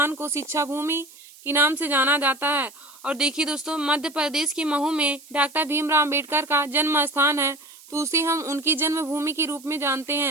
को शिक्षा भूमि के नाम से जाना जाता है। और देखिए दोस्तों मध्य प्रदेश के महू में डॉक्टर भीमराव अम्बेडकर का जन्म स्थान है तो उसे हम उनकी जन्मभूमि के रूप में जानते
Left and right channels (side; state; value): right; noise; hiss, 22 dB below the sound